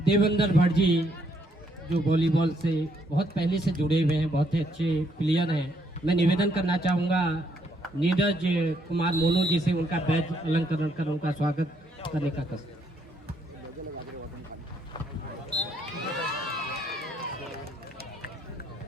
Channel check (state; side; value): normal; both; correlation 0.71